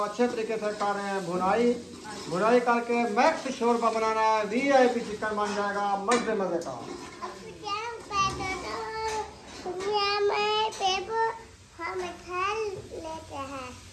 तरीके से कर रहे हैं भुनाई, भुनाई करके मैक्स शोरबा बनाना है। VIP चिकन बन जाएगा मजे मजे का।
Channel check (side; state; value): both; identical; correlation 1.00